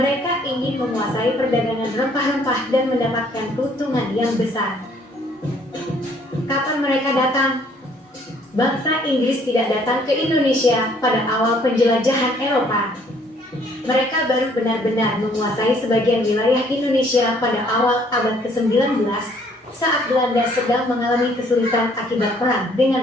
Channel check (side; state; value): both; normal; correlation 0.62